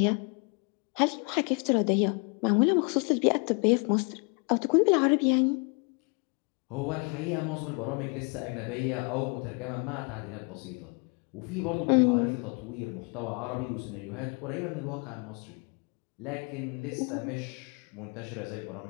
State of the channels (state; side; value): quieter; right; 34.4 dB